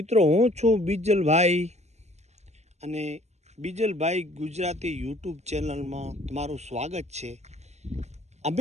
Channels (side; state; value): left; late; 0.32 ms